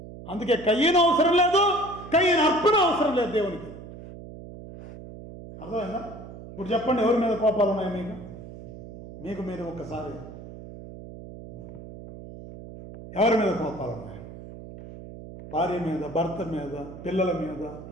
అందుకే కయ్యను అవసరం లేదు, కయ్యను అర్పణ అవసరం లేదు దేవునికి. అర్థమైందా? ఇప్పుడు చెప్పండి, ఎవరి మీద కోపాలు ఉన్నాయి మీకు మీరు ఒక్కసారి ఎవరి మీద కోపాలు ఉన్నాయి? భార్య మీద, భర్త మీద, పిల్లల మీద,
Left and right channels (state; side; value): noise; right; hum, 14 dB below the sound